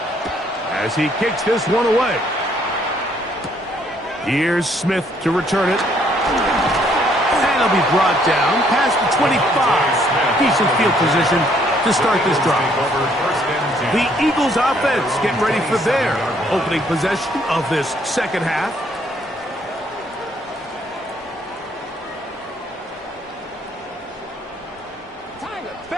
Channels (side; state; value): both; normal; correlation 0.67